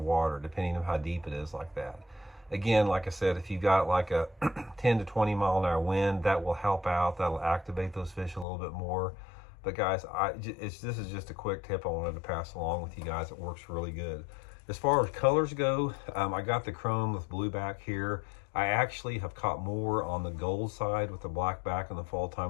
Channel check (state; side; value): drops out; right; at 8.5 s